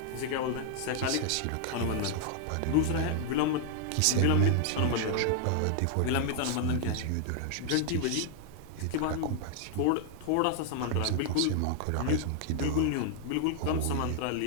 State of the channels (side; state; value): both; different; correlation 0.00